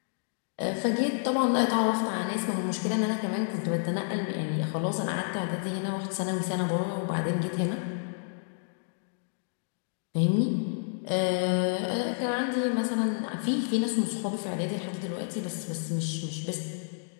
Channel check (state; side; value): silent; right; digital silence